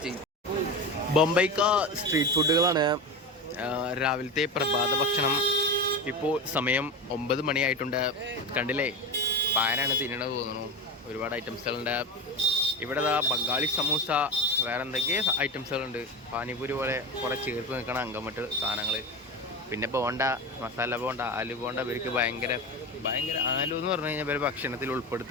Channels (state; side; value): normal; both; correlation 0.22